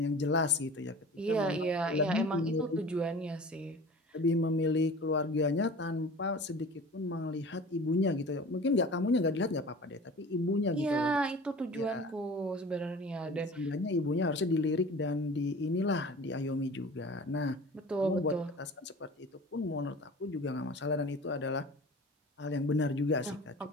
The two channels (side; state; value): both; normal; correlation 0.40